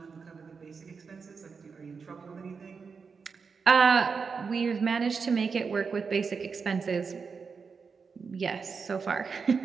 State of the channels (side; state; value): left; quieter; 5.4 dB